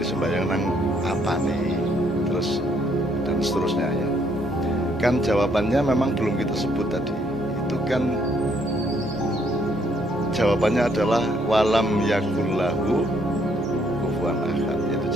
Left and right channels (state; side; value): normal; both; correlation 0.69